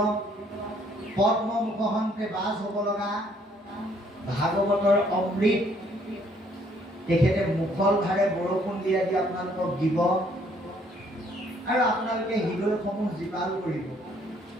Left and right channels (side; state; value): both; normal; correlation 0.64